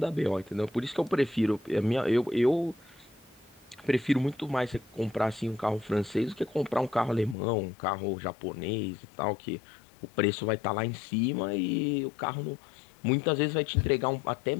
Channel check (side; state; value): right; drops out; at 7.4 s